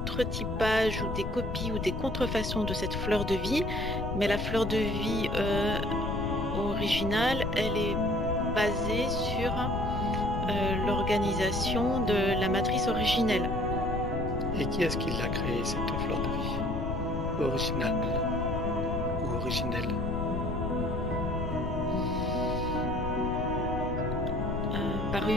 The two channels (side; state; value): left; noise; rumble, 4 dB below the sound